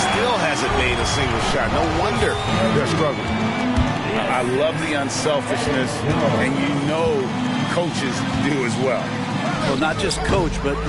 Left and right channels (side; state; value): both; identical; correlation 1.00